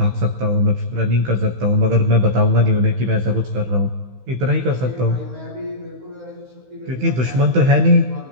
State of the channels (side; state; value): left; late; 16 ms